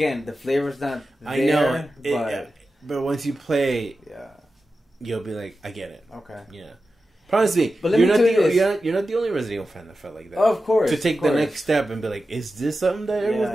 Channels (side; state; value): both; normal; correlation 0.92